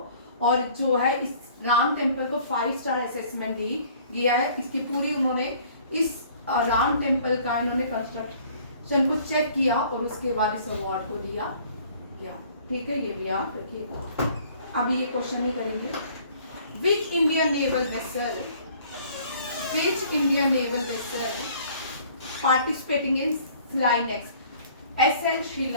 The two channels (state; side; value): inverted; both; correlation -0.55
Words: और जो है इस राम टेम्पल को 5 स्टार असेसमेंट दिया है। इसकी पूरी उन्होंने इस राम टेम्पल का इन्होंने कंस्ट्रक्शन को चेक किया और उसके बाद इस अवार्ड को दिया गया। ठीक है, ये भी आप रखिएगा। अभी ये क्वेश्चन नहीं करेंगे। Which Indian naval vessel participating in Flynex? SL